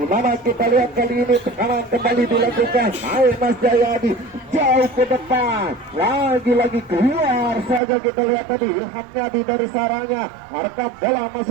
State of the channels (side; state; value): left; drops out; at 7.8 s